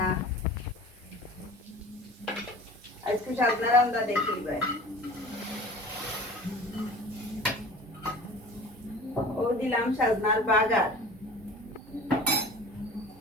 আজকে সাজনা রান্দা দেখি ভাই ও দিলাম সাজনার বাগার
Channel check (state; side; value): normal; both; correlation 0.41